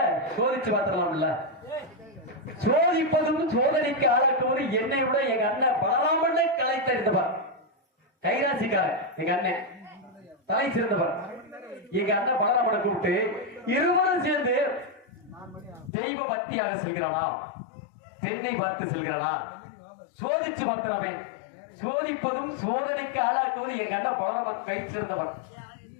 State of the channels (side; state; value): right; drops out; at 15.9 s